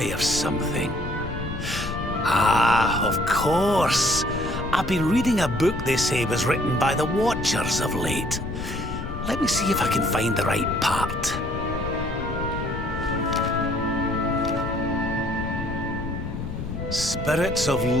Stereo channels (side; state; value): left; noise; rumble, 6 dB below the sound